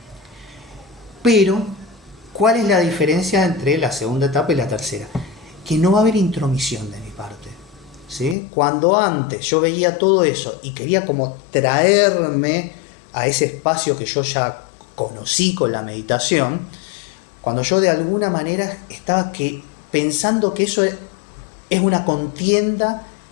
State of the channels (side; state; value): right; drops out; at 8.3 s